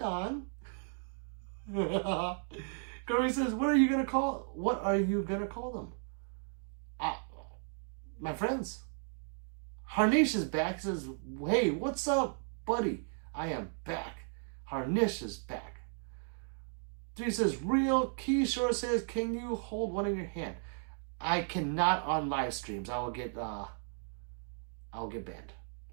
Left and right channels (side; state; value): left; silent; 54 dB below the other